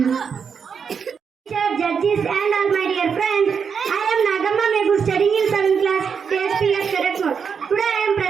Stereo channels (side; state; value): left; quieter; 6.4 dB